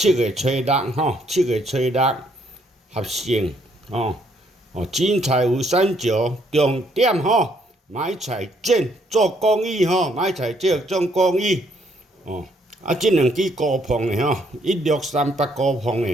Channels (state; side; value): normal; both; correlation 0.69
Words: 月初67月初6合成精彩有三九，重点买菜剪做公益买菜剪做公益。这两支高磅的1638高磅